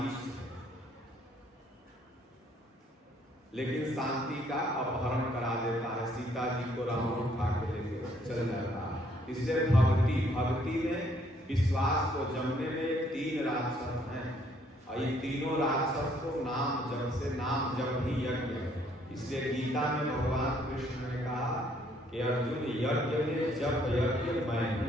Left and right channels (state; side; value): normal; both; correlation 0.66